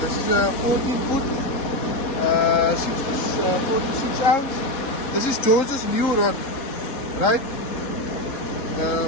is a 14 foot, 46 ounce. This is George's new rod, right?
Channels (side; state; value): right; late; 4.2 ms